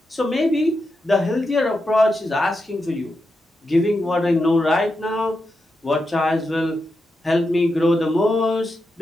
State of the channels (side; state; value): both; normal; correlation 0.87